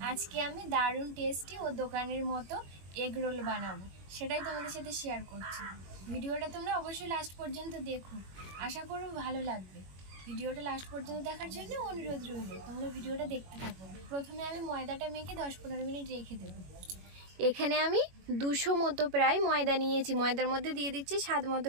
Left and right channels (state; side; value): late; left; 21 ms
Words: আজকে আমি দারুণ টেস্টি ও দোকানের মতো এগ রোল বানাবো, সেটাই তোমাদের সাথে শেয়ার করছি। ভিডিওটা তোমরা অবশ্যই লাস্ট পর্যন্ত দেখো, আশা করব ভালো লাগবে। ভিডিওটা লাস্ট পর্যন্ত দেখার জন্য অনুরোধ রইল, তোমরা ভিডিওটা দেখতে থাকো। প্রথমে আমি ময়দাটা মেখে 10-15 মিনিট রেখে দেবো। এখানে আমি 200 মতো প্রায় ময়দা নিয়েছি। ময়দার মধ্যে দিয়ে দিচ্ছি স্বাদ মতো